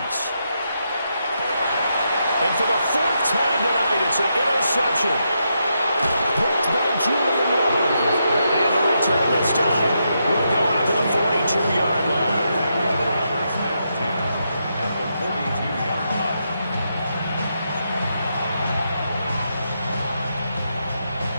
And for the 4th time tonight, it's an interception. Picked by Julian Love. And the return this time will go out to the 42-yard line.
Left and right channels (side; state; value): both; inverted; correlation -0.82